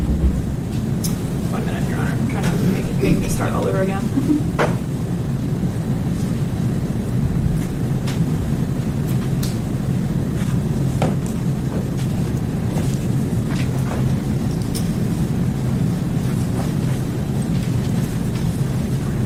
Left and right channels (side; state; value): both; identical; correlation 1.00